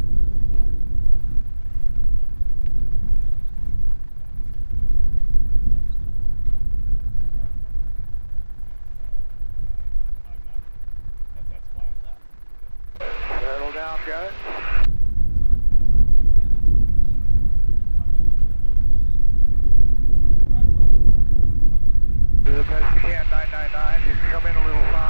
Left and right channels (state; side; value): inverted; both; correlation -1.00